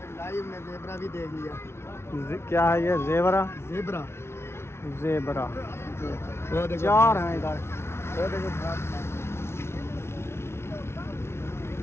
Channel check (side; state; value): right; late; 0.12 ms